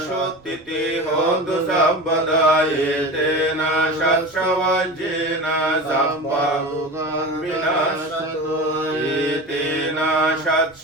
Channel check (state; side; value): noise; right; rumble, 30 dB below the sound